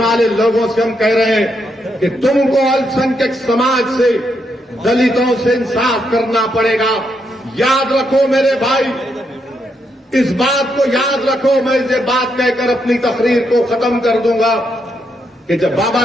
लोगों से हम कह रहे हैं कि तुमको अल्पसंख्यक समाज से, दलितों से इंसाफ करना पड़ेगा। याद रखो मेरे भाई, इस बात को याद रखो। मैं ये बात कहकर अपनी तकरीर को खत्म कर दूंगा कि जब बाबा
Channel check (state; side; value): normal; both; correlation 0.79